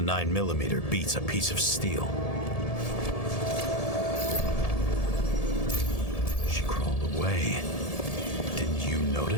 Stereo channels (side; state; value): right; late; 1.7 ms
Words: beats a piece of steel. She crawled away. Didn't you